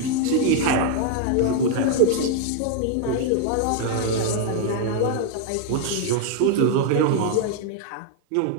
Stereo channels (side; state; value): both; different; correlation 0.00